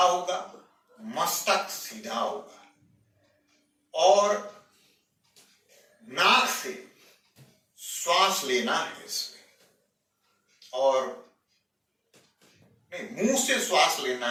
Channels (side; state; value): both; identical; correlation 1.00